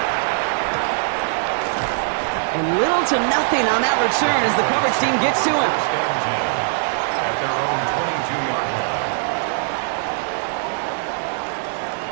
And little to nothing on that return as the coverage team gets to him. At their own 22-yard line.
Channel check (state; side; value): silent; left; digital silence